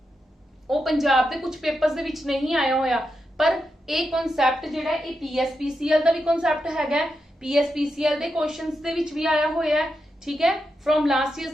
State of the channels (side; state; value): both; normal; correlation 0.86